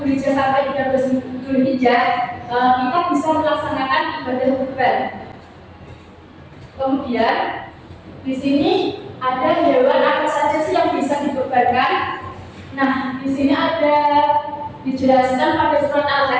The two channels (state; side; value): identical; both; correlation 1.00